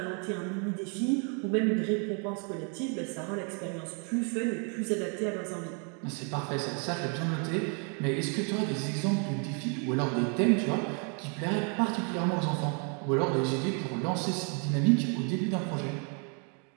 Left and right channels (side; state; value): left; quieter; 38.5 dB